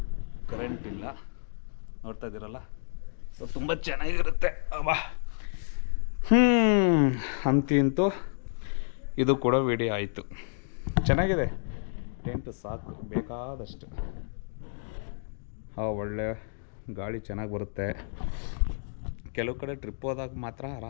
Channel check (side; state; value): right; silent; digital silence